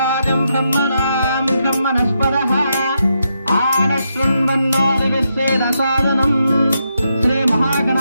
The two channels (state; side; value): inverted; both; correlation -0.82